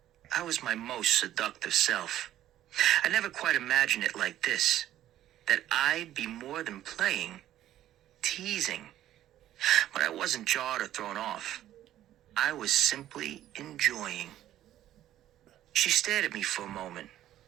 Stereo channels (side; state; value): left; quieter; 12.8 dB